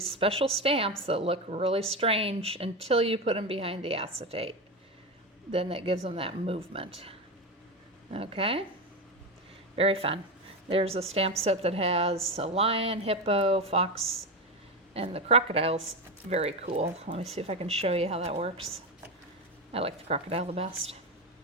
special stamps that look really strange until you put them behind the acetate. Then that gives them that movement. Okay, very fun. There's a stamp set that has a lion, hippo, fox, and the crocodile's very cool. Let me see if I can show you how that works. I like the crocodile the best.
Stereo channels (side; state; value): both; normal; correlation 0.17